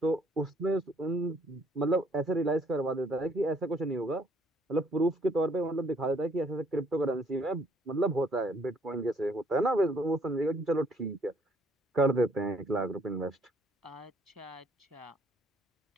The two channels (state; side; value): normal; both; correlation 0.64